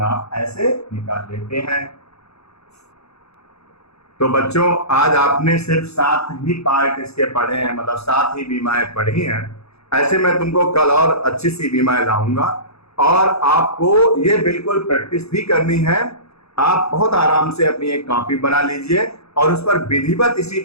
ऐसे निकाल लेते हैं। तो बच्चों आज आपने सिर्फ 7 ही पार्ट इसके पढ़े हैं, मतलब 7 ही बीमाएं पढ़ी हैं। ऐसे मैं तुमको कल और अच्छी सी बीमाएं लाऊंगा, और आपको ये बिल्कुल प्रैक्टिस भी करनी है। आप बहुत आराम से अपनी एक कॉपी बना लीजिए और उस पर विधिवत इसी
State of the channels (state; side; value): late; right; 0.79 ms